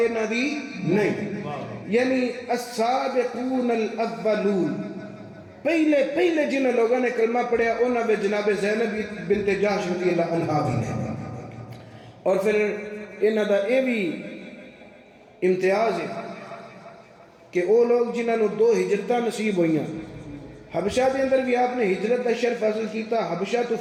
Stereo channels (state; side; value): identical; both; correlation 1.00